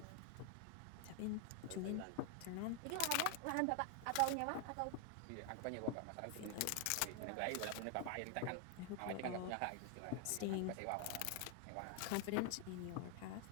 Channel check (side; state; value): both; different; correlation 0.00